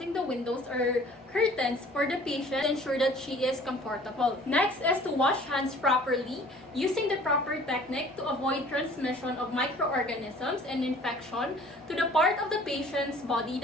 the windows or curtains for the patient to ensure that she is comfortable. Next is to wash hands properly using the proper technique to avoid transmission of microorganisms and infection to the part of the patient's body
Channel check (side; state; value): both; normal; correlation 0.51